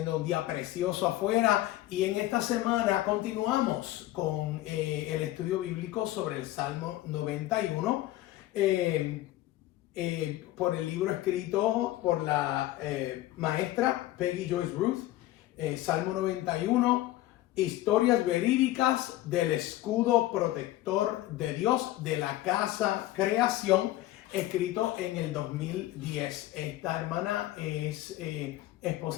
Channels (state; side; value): quieter; right; 15.6 dB